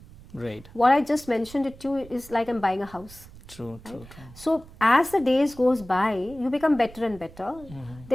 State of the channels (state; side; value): noise; right; rumble, 20 dB below the sound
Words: Right. What I just mentioned it to you is like I'm buying a house. True. So as the days goes by, you become better and better.